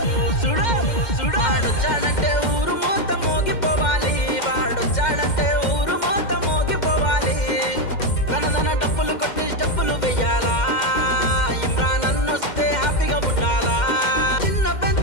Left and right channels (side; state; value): right; late; 2.1 ms